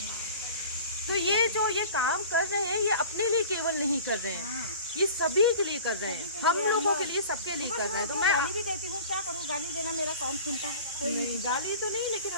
तो ये जो ये काम कर रहे हैं, ये अपने लिए केवल नहीं कर रहे हैं, हाँ। ये सभी के लिए कर रहे हैं, हम लोगों के लिए, सबके लिए कर रहे हैं। तो मैं गाली भी देती हूँ, क्या करूँ, गाली देना मेरा कौन सुनता है? कोई नहीं, गाली तो नहीं, लेकिन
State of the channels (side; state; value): both; inverted; correlation -0.41